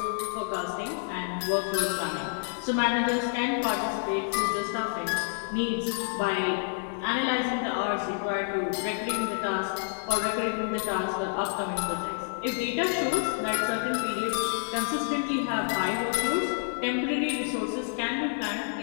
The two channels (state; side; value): silent; right; digital silence